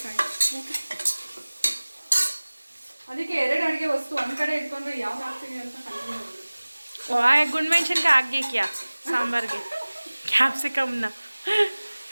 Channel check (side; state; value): both; inverted; correlation -1.00